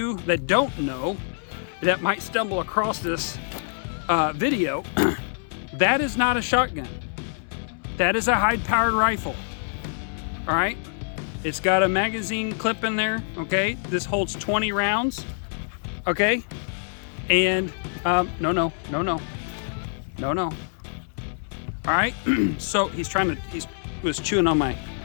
that don't know, that might stumble across this video, that is not a shotgun. That is a high-powered rifle. All right, it's got a magazine clip in there. Okay, this holds 20 rounds. Okay, and no. All right, so he was chewing on my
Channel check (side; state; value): right; silent; digital silence